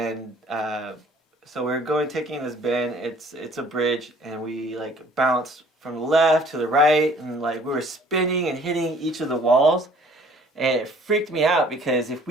so we're taking this bend. It's a bridge, and we like bounced from the left to the right, and like we were spinning and hitting each of the walls, and it freaked me out because if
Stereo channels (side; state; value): both; normal; correlation 0.55